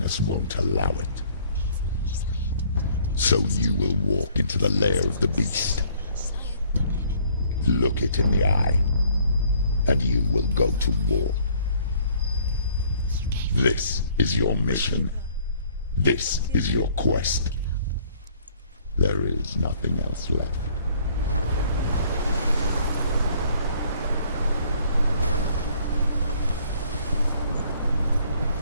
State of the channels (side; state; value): both; inverted; correlation -0.60